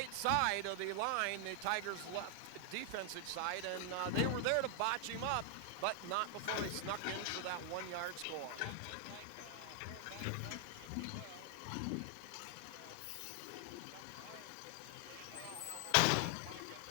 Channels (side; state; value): both; different; correlation 0.00